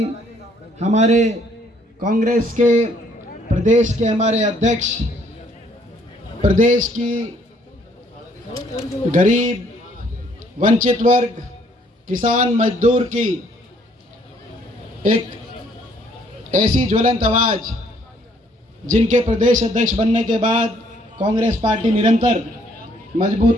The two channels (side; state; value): both; normal; correlation 0.65